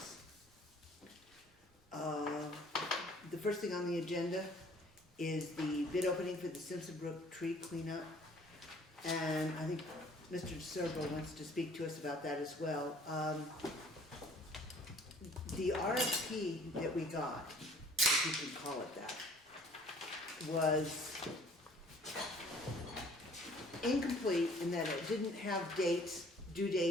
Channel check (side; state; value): both; normal; correlation 0.54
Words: The first thing on the agenda is the bid opening for the Simpson Brook tree cleanup. And I think Mr. DeSerbo wants to speak to us about that as well. The RFP that we got, if you can call it that, was incomplete in that it didn't have dates, due